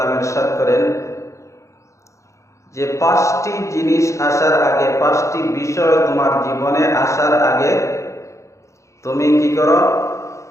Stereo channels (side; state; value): right; late; 0.15 ms